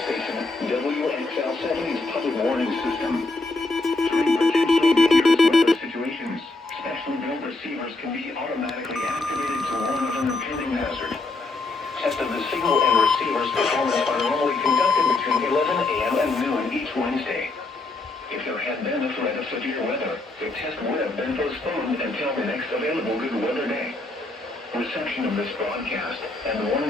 Station, WXL70's public warning system. During potentially dangerous weather situations, specially built receivers can be automatically activated to warn of an impending hazard. Tests of the signal and receiver's performance are normally conducted between 11 a.m. and noon each Wednesday. If there had been a threat of severe weather, the test would have been postponed until the next available good weather day. Reception of this broadcast and the warning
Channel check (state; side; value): quieter; right; 3.3 dB